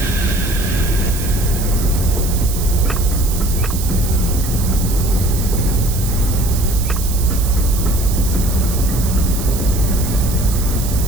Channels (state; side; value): noise; right; hiss, 9 dB below the sound